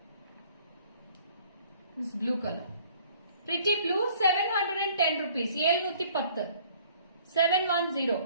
This blue color. Pretty blue, 710 rupees. 710. 710.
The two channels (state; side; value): inverted; both; correlation -0.56